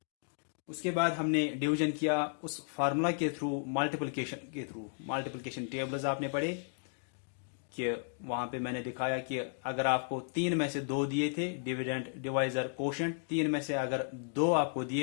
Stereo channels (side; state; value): right; silent; digital silence